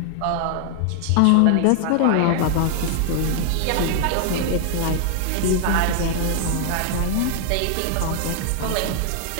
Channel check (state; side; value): different; both; correlation 0.00